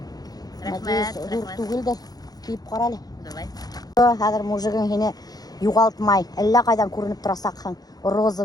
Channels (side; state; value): right; late; 0.19 ms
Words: Надеюсь, тугылды киіп қарали. Давай. Қазір мужигың хине юғалтмай. Әллә қайдан көрініп тұрасақхан.